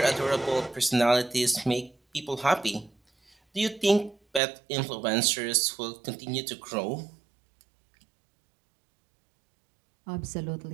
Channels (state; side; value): drops out; left; at 4.4 s